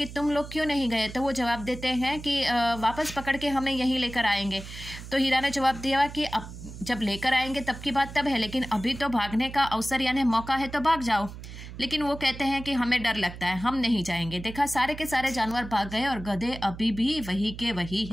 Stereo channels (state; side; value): noise; right; hum, 12 dB below the sound